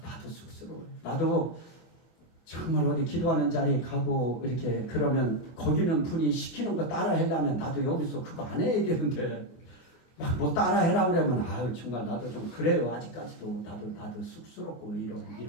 나도 쑥스러워요. 나도 정말 어디 기도하는 자리에 가고 이렇게 그러면 거기는 분이 시키는 거 따라 하려면 나도 여기서 그거 안 해야 되는데 막 뭐 따라 해라 그러면 정말 나도 좀 그래요. 아직까지도 나도 쑥스럽고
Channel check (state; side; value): late; right; 24 ms